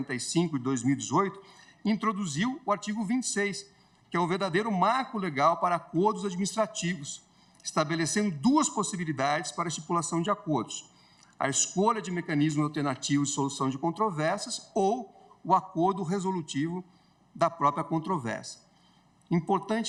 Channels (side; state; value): both; identical; correlation 1.00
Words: de 2018, introduziu o artigo 26, que é um verdadeiro marco legal para acordos administrativos, estabelecendo duas possibilidades para a estipulação de acordos: a escolha de mecanismos alternativos de solução de controvérsias ou o acordo resolutivo da própria controvérsia.